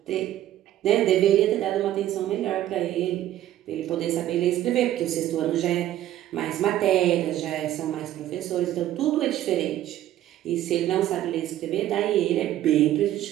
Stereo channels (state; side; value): quieter; left; 13.0 dB